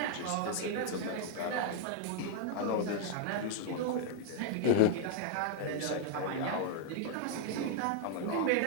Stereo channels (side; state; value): both; different; correlation -0.01